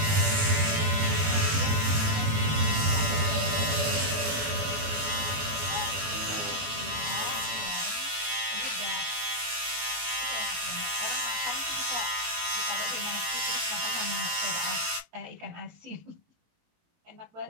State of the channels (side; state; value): left; late; 19 ms